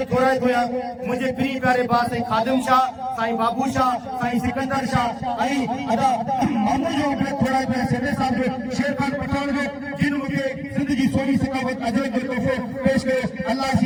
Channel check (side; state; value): both; identical; correlation 1.00